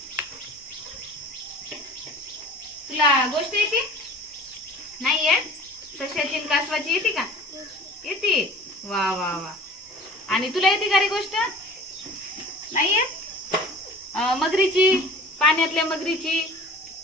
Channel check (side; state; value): both; normal; correlation 0.43